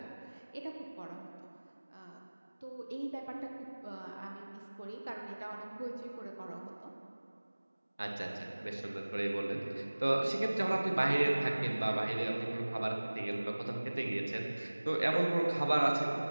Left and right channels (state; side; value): inverted; both; correlation -1.00